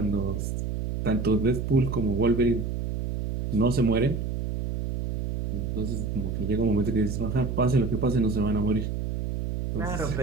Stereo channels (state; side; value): noise; right; hum, 3 dB below the sound